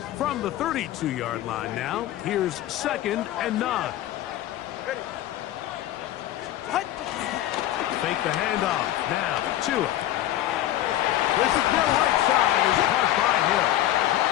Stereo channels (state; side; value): quieter; right; 13.6 dB